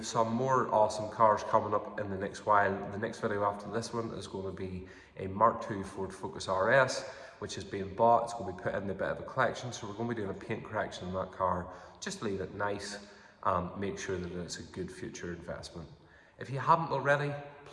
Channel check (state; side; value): identical; both; correlation 1.00